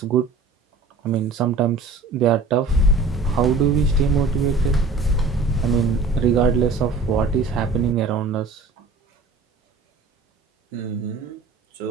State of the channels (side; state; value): left; quieter; 3.8 dB